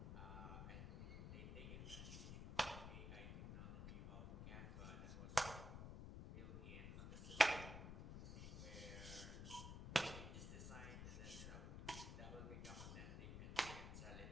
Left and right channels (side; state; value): left; noise; rumble, 6 dB below the sound